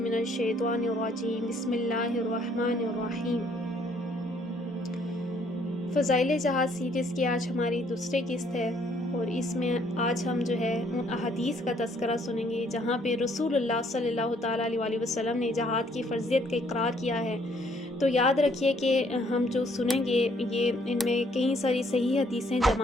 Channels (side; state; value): both; normal; correlation 0.65